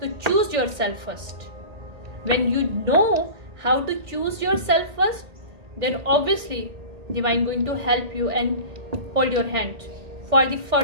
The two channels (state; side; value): late; left; 1.8 ms